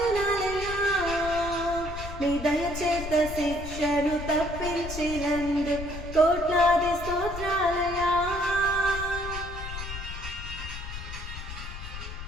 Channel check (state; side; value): noise; left; rumble, 9 dB below the sound